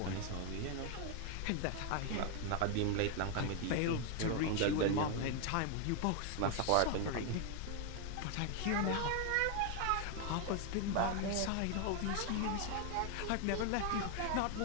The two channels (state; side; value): different; both; correlation 0.01